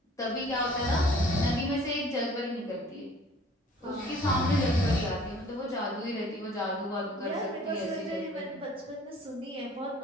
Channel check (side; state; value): both; normal; correlation 0.52